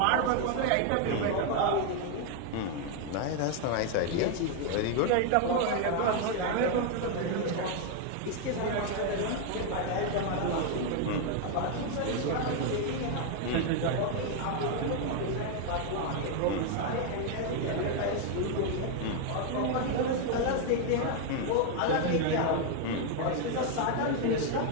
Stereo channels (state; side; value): different; both; correlation 0.00